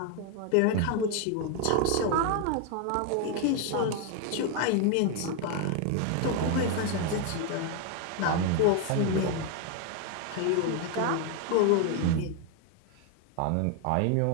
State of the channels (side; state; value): both; different; correlation 0.01